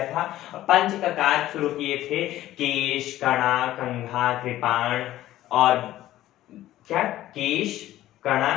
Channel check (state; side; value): quieter; right; 14.4 dB